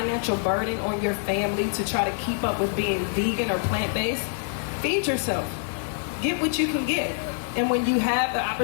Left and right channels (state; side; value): silent; right; digital silence